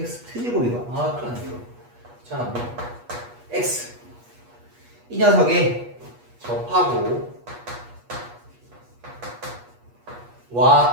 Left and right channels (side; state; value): left; late; 8.3 ms